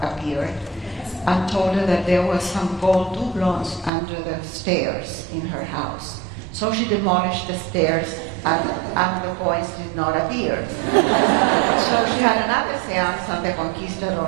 and told her that there were some gold doubloons under the stairs in her house. So she demolished the stairs, and the coins did not appear. So she had another seance, and the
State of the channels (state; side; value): drops out; left; at 3.9 s